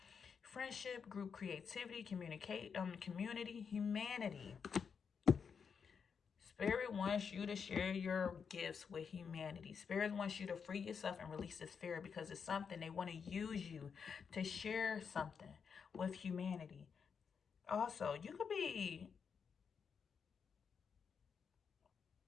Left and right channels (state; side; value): quieter; right; 6.3 dB